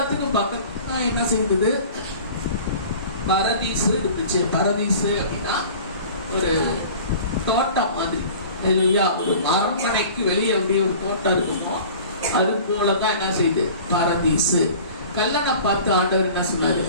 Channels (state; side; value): inverted; both; correlation -0.43